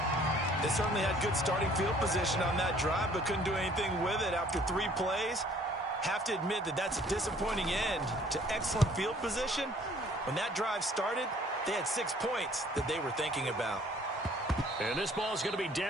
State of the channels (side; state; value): both; normal; correlation 0.57